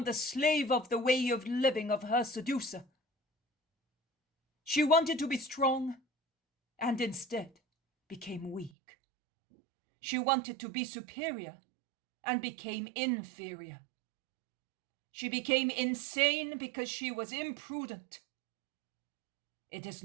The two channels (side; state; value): left; drops out; at 8.7 s